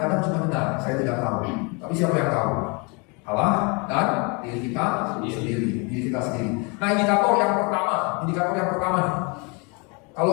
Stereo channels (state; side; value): quieter; right; 31.6 dB